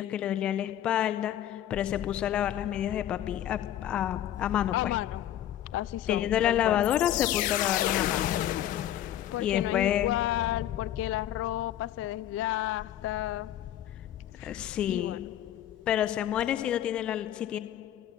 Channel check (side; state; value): right; quieter; 11.8 dB